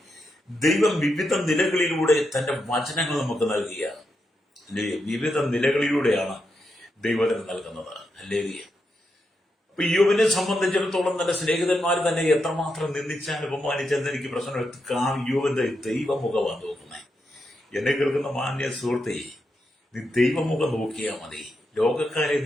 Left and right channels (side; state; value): both; normal; correlation 0.84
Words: ദൈവം വിവിധ നിലകളിലൂടെ തന്റെ വചനങ്ങൾ നമുക്ക് നൽകിയ അല്ലേ? വിവിധ നിലകളിലൂടെയാണ് ദൈവത്തിന് നൽകുന്നത്. അല്ലേ? അപ്പൊ യോബിനെ സംബന്ധിച്ചിടത്തോളം തന്റെ സ്നേഹിതന്മാർ തന്നെ എത്രമാത്രം നിന്ദിച്ചാൽ അപമാനിച്ചെന്ന് എനിക്ക് പ്രശ്നം. യോബിന്റെ ദൈവമുഖമാണ് നോക്കുന്നത്. എന്നെ കേൾക്കുന്ന മാന്യ സുഹൃത്തെ, നീ ദൈവമുഖം നോക്കിയാൽ മതി. ലോകക്കാരെ